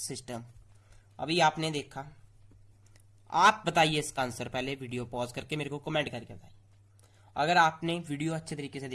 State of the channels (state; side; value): identical; both; correlation 1.00